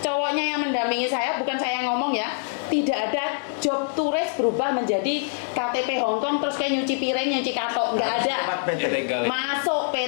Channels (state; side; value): silent; right; digital silence